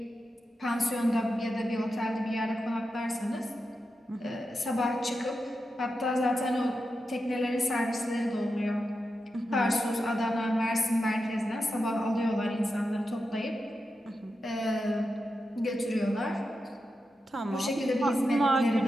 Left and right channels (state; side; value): normal; both; correlation 0.89